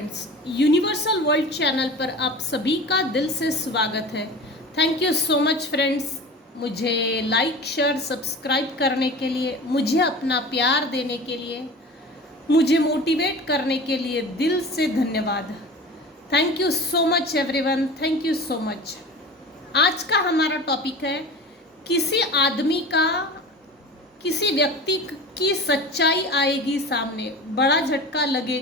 universal world channel पर आप सभी का दिल से स्वागत है। Thank you so much friends, मुझे लाइक शेयर सब्सक्राइब करने के लिए, मुझे अपना प्यार देने के लिए, मुझे मोटिवेट करने के लिए दिल से धन्यवाद। Thank you so much everyone, thank you so much. आज का हमारा टॉपिक है किसी आदमी का, किसी व्यक्ति की सच्चाई आएगी सामने, बड़ा झटका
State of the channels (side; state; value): both; normal; correlation 0.35